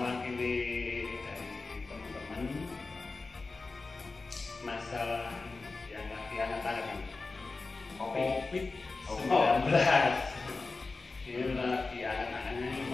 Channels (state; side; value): quieter; right; 3.8 dB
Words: dari teman-teman masalah yang lagi hangat-hangat COVID-19. Ini lagi hangat-hangatnya, ini